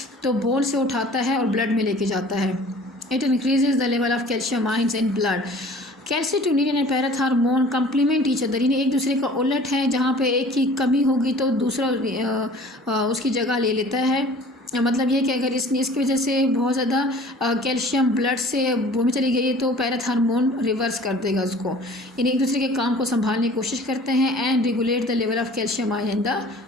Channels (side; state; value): both; normal; correlation 0.48